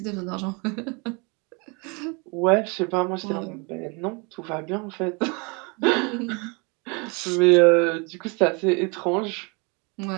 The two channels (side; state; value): left; quieter; 31.1 dB